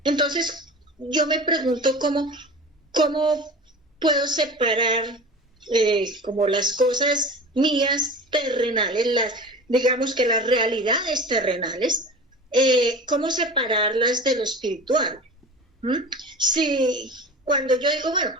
Entonces, yo me pregunto cómo puedo separar como las cosas mías terrenales, digamos que las realidades terrenales, cómo separarlas de lo espiritual. Si cuando yo digo, bueno,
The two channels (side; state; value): both; normal; correlation 0.35